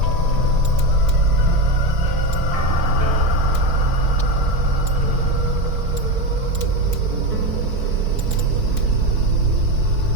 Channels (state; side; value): late; left; 4.5 ms